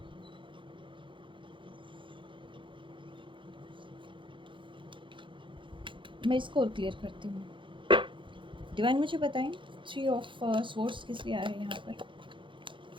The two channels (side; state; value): left; late; 0.24 ms